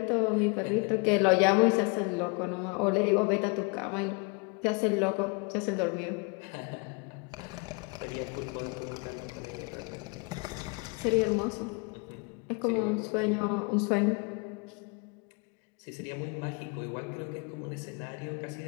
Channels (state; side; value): quieter; right; 31.8 dB